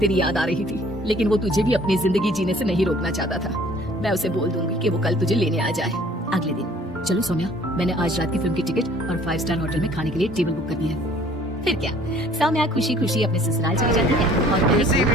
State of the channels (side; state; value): both; normal; correlation 0.55